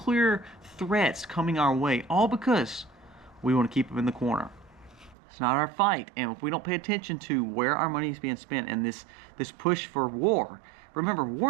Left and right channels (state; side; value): drops out; left; at 5.2 s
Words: threats coming our way, all because we want to keep them in the corner. It's not our fight. And if we don't pay attention to where our money is being spent and this push for war, remember,